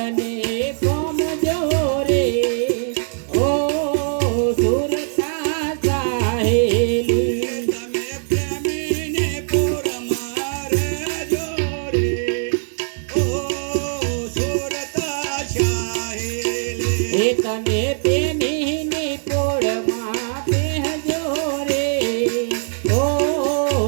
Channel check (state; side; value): silent; left; 59 dB below the other